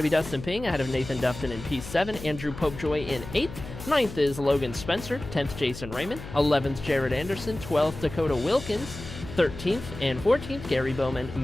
be Dustin Ping ahead of Nathan Dufton in P7, Andrew Popejoy in 8th. 9th is Logan Spencer, 10th Jason Raymond, 11th Jared Anderson, 12th Dakota Wilkins, 13th and 14th, Gary Bowman,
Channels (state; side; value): noise; left; hum, 12 dB below the sound